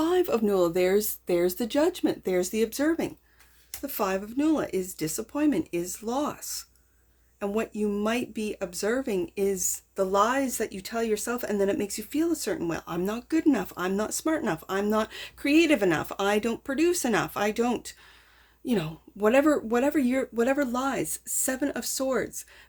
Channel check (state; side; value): identical; both; correlation 1.00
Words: of Nula, there's the judgment, there's the observing. The Five of Nula is disappointment, is loss. And what you might be observing is the lies that you tell yourself, and then it makes you feel a certain way. I'm not good enough. I'm not smart enough. I'm not creative enough. I don't produce enough. I don't, whatever lies. Seven of Swords,